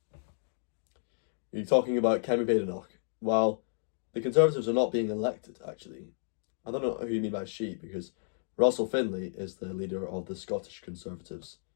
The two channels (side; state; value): right; silent; digital silence